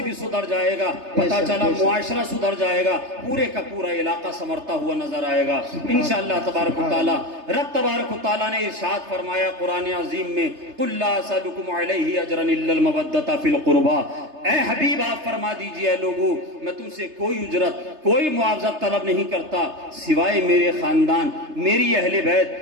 بھی سدھر جائے گا، پتہ چلا معاشرہ سدھر جائے گا، پورے کا پورا علاقہ سنورتا ہوا نظر آئے گا انشاءاللہ تبارک و تعالی۔ رب تبارک و تعالی نے ارشاد فرمایا قرآن عظیم میں قُلْ لَا أَسْأَلُكُمْ عَلَيْهِ أَجْرًا إِلَّا الْمَوَدَّةَ فِي الْقُرْبَى، اے حبیب آپ فرما دیجئے اے لوگوں میں تم سے کوئی اجرت کوئی معاوضہ طلب نہیں کرتا سوائے میرے خاندان، میری اہل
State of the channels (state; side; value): late; left; 3.3 ms